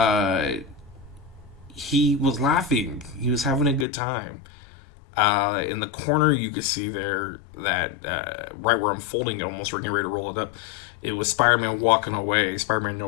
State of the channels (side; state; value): right; drops out; at 3.9 s